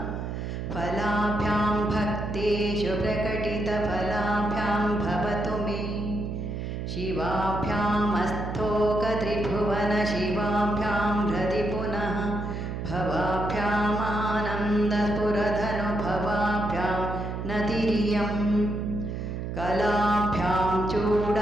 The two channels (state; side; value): noise; right; hum, 5 dB below the sound